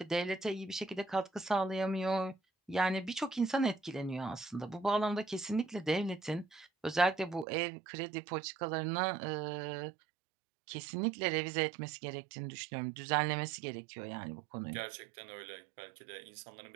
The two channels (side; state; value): left; drops out; at 7.5 s